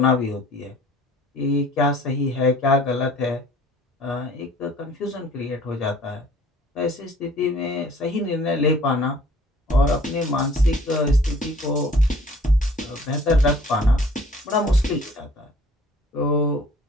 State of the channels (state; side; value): normal; both; correlation 0.52